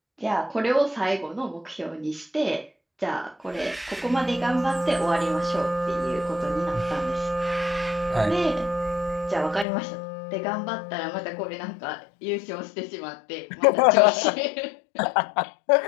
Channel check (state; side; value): drops out; right; at 9.7 s